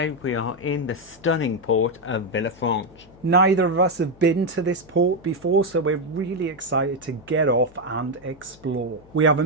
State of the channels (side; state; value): left; noise; hum, 26 dB below the sound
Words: we are in the stunning port of Villefranche. Neither of us have been to this port before, so we're really excited to get off and explore. We